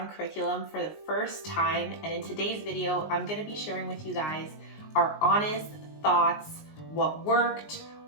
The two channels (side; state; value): right; late; 19 ms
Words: curriculum for the first time, and in today's video, I'm gonna be sharing with you guys our honest thoughts, what worked,